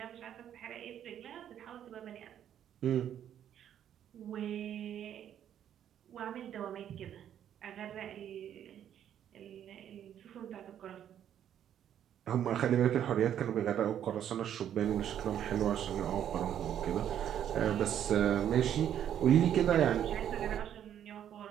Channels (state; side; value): quieter; left; 10.0 dB